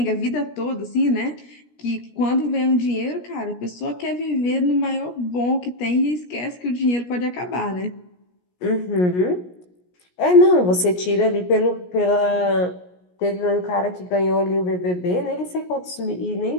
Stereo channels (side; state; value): right; late; 17 ms